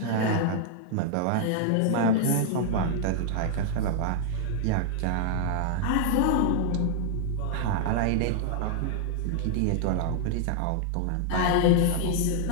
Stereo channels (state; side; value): different; both; correlation -0.01